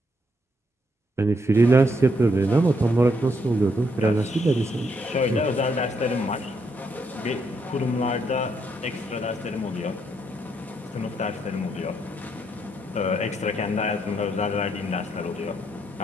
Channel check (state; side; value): normal; both; correlation 0.75